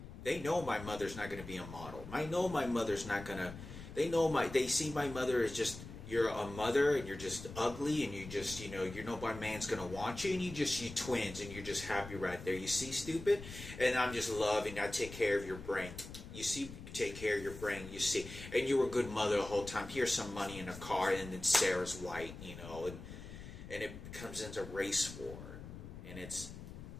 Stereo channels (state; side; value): noise; left; rumble, 12 dB below the sound